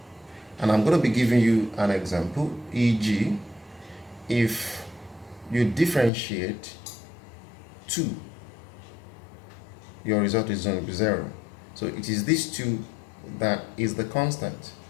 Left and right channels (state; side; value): drops out; right; at 6.1 s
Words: And I'm going to be giving you an example, e.g., if you differentiate 2, your result is going to be 0. So it is this 2 that is the constant.